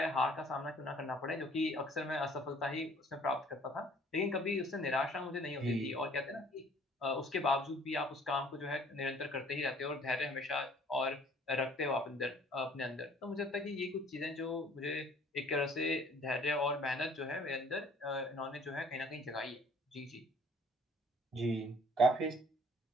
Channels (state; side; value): normal; both; correlation 0.56